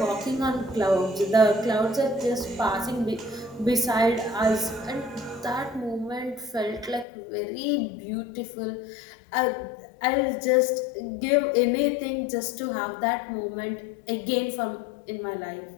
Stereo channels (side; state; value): right; drops out; at 7.1 s